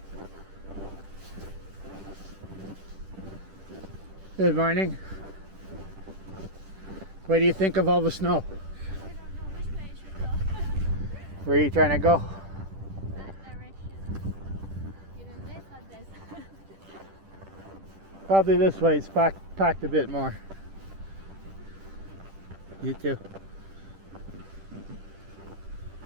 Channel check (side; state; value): left; late; 10 ms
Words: Good morning. What do you think of all the snow? I don't know which way I should go. Where are you trying to go? That direction. Either this or this. Probably this way. It's packed a bit more. You too.